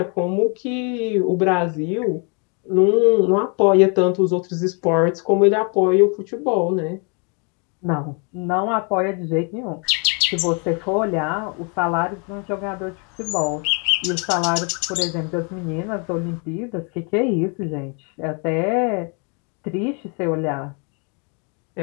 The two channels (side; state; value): right; quieter; 35.6 dB